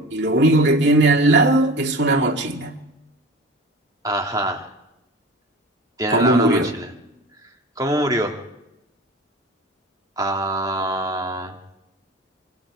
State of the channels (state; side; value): normal; both; correlation 0.35